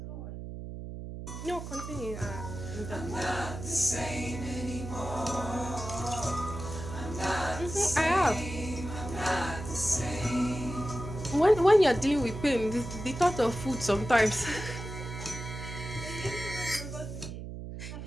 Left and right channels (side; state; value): right; noise; hum, 9 dB below the sound